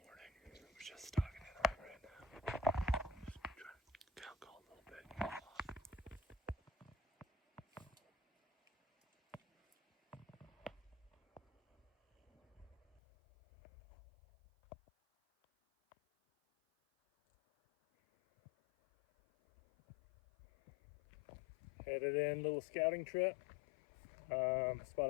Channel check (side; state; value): right; drops out; at 13.0 s